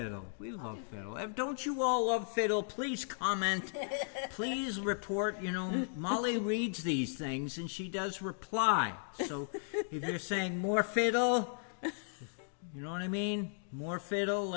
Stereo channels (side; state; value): right; silent; digital silence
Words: We love fiddle. Don't you all love fiddle? Please comment. Please report. You know, Molly reads these things and she does reply. So if you're saying more fiddle, you know what I mean? More fiddle,